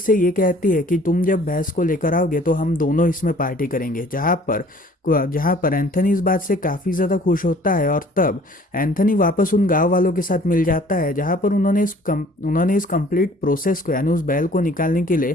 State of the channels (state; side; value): normal; both; correlation 0.53